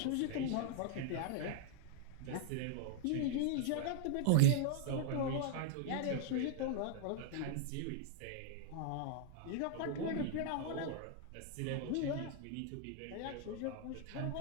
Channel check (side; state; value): both; different; correlation 0.00